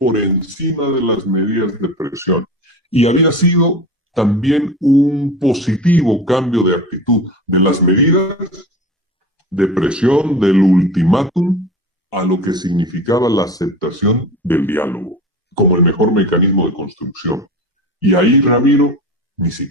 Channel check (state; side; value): normal; both; correlation 0.32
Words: encima de las medidas de presión y había sido también un positivo cambio de actitud de las medidas de presión del ultimátum a lo que significaba la aceptación del diálogo como el mejor mecanismo de construcción. Y ahí, Ramiro, ni